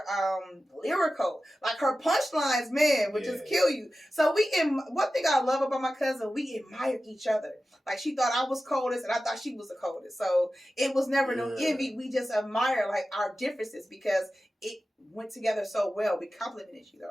lyrical. Like her punchlines, man, would just kill you. So one thing I love about my cousin, we admired each other. Like she thought I was coldest and I thought she was the coldest. So it was never no envy. We just admire like our differences because it went together so well. We complimented each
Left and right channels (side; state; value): both; normal; correlation 0.94